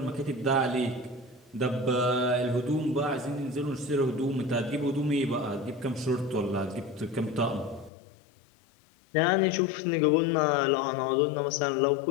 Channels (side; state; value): right; drops out; at 7.9 s